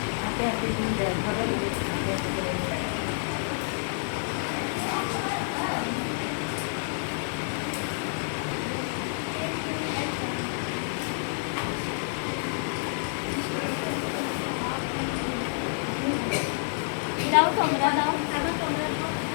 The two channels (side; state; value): right; silent; digital silence